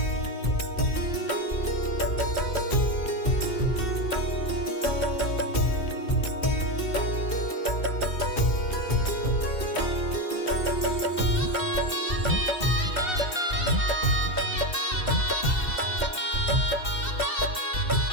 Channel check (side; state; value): right; late; 2.7 ms